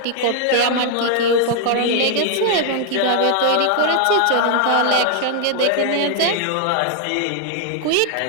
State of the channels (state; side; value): different; both; correlation 0.00